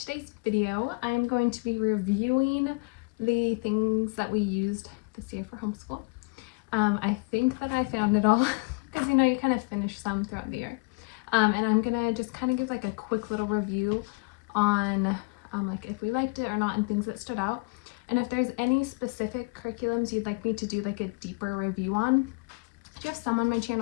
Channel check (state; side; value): quieter; right; 29.7 dB